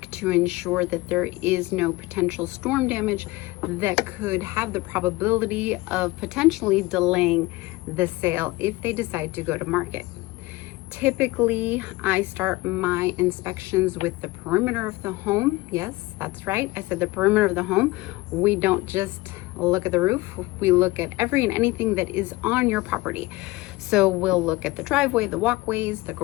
to ensure that there is no potential storm damage that could have the probability of potentially delaying the sale if they decide to go to market. Typically, I start my inspections with the perimeter of the home. Yes, that's right. I said the perimeter of the home. We don't just look at the roof. We look at every and anything that is on your property. So we'll look at the driveway, the walkways, the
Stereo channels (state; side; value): quieter; right; 20.7 dB